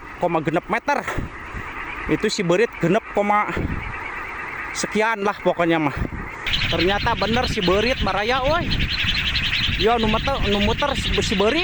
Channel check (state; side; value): identical; both; correlation 1.00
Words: meter. Itu si beurit genep koma sekian lah pokoknya mah. Ternyata bener si beurit baraya euy. Yo nu muter si